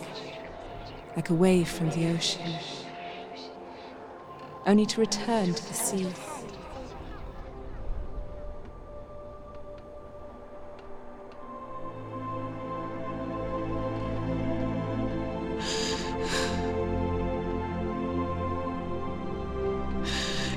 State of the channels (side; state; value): both; identical; correlation 1.00